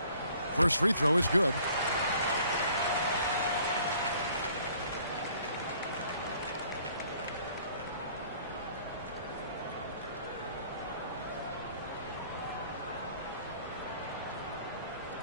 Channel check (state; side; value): inverted; both; correlation -0.57